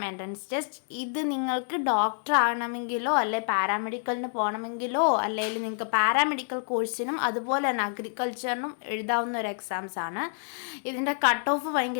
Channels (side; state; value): right; silent; digital silence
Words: entrance test. ഇത് നിങ്ങൾക്ക് ഡോക്ടർ ആകണമെങ്കിലോ അല്ലെ പാരാമെഡിക്കലിന് പോകണമെങ്കിലോ അല്ലെങ്കിൽ നിങ്ങൾക്ക് പാരാമെഡിക്കൽ കോഴ്സിനും അതുപോലെ തന്നെ അഗ്രികൾച്ചറിനും എഴുതാവുന്ന ഒരു എക്സാംസ് ആണ്. ഇതിൻ്റെ കട്ട് ഓഫ്